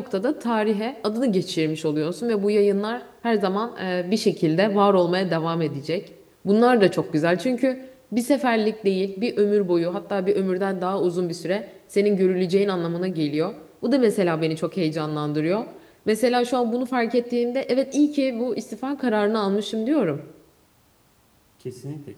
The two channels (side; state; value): both; identical; correlation 1.00